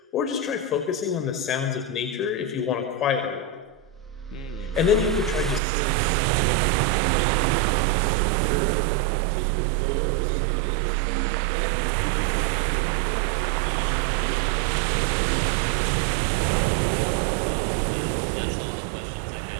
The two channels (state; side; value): drops out; left; at 5.6 s